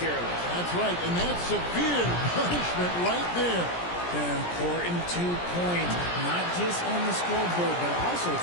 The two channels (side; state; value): right; late; 17 ms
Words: That's right, and that's severe punishment right there. An important 2 points, not just on the scoreboard, but also